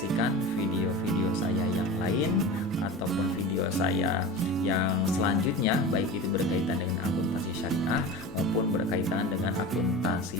video-video saya yang lain ataupun video saya yang selanjutnya, baik itu berkaitan dengan akuntansi syariah maupun berkaitan dengan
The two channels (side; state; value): both; normal; correlation 0.31